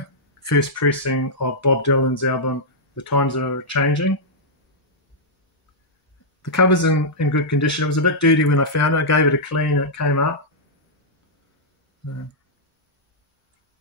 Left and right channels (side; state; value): both; normal; correlation -0.09